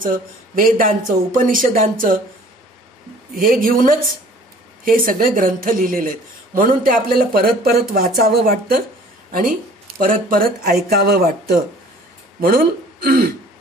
वेदांचं, उपनिषदांचं हे घेऊनच हे सगळे ग्रंथ लिहिलेले आहेत. म्हणून ते आपल्याला परत परत वाचावं वाटतं आणि परत परत ऐकावं वाटतं. म्हणून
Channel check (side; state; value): both; normal; correlation 0.51